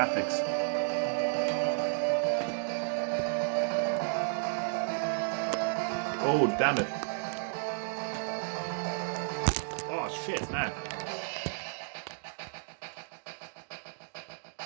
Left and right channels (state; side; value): silent; left; digital silence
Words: Oh, damn it. Oh, shit, man.